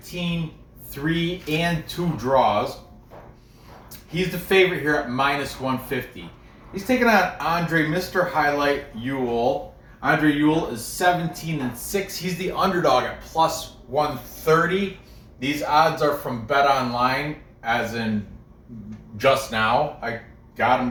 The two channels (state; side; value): identical; both; correlation 1.00